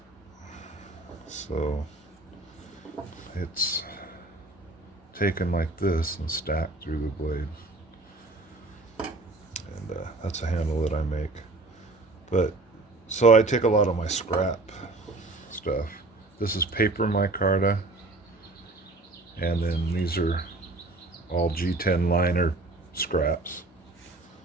so it's taken like this and stacked through the blade. And that's a handle that I make. But so I take a lot of my scrap stuff. This is paper micarta, and then these are all G10 liner scraps.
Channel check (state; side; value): quieter; left; 3.0 dB